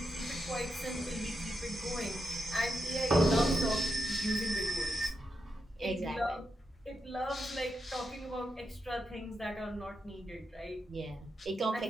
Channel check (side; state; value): both; normal; correlation 0.86